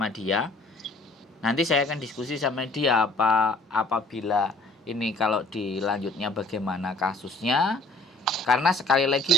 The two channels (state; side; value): normal; both; correlation 0.56